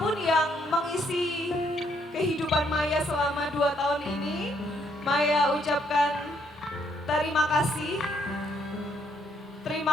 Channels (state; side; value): normal; both; correlation 0.71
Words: yang mengisi kehidupan Maya selama 2 tahun ini, Maya ucapkan terima kasih.